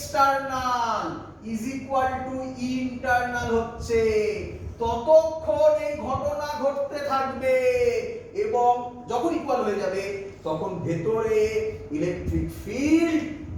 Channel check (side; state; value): both; identical; correlation 1.00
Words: is equal to E internal হচ্ছে, ততক্ষণ এই ঘটনা ঘটতে থাকবে। এবং যখন ইকুয়াল হয়ে যাবে তখন ভেতরে ইলেকট্রিক ফিল্ড